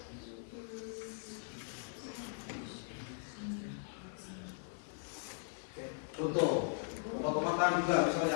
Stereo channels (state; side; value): silent; right; digital silence